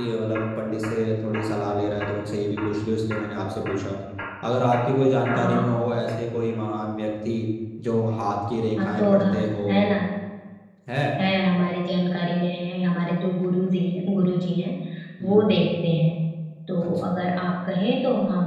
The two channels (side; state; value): both; identical; correlation 1.00